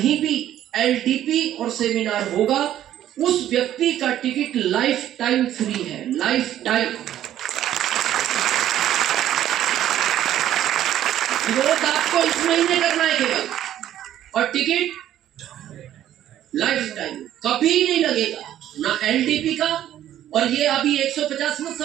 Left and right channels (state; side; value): quieter; left; 11.9 dB